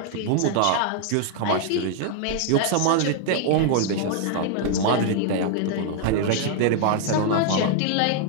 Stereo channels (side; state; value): both; different; correlation 0.00